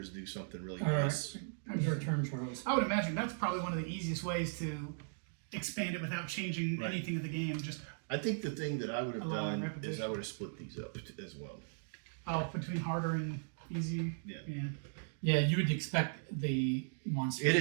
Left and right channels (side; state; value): left; silent; digital silence